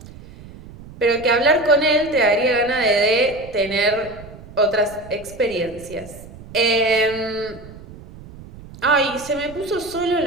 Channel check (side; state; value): right; noise; rumble, 18 dB below the sound